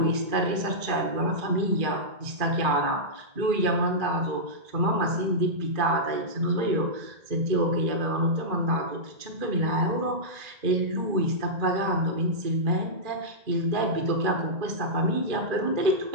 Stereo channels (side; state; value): left; late; 2.3 ms